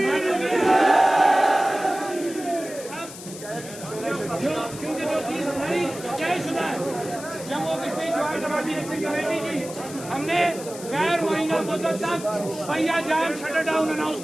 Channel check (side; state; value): left; noise; hiss, 14 dB below the sound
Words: क्योंकि जो चीज हमारी तयशुदा है जम्मू कश्मीर ज्वाइंट अवामी एक्शन कमेटी की, हमने गैर मुहैया मुद्दत तक पहिया जाम शटर डाउन अनाउंस